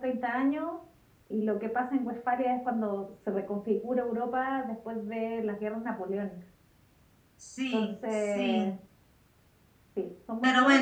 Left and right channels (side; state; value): both; identical; correlation 1.00